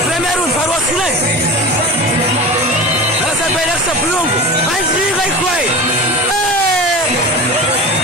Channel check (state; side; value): normal; both; correlation 0.31